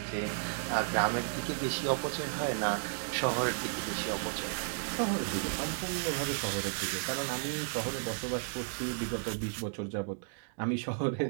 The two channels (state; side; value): silent; left; digital silence